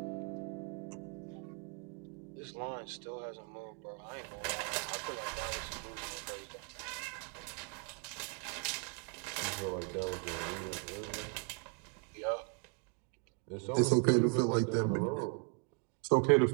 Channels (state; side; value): quieter; left; 38.5 dB